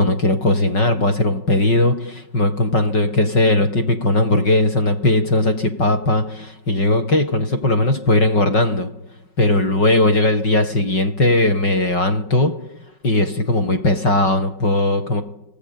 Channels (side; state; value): right; late; 5.4 ms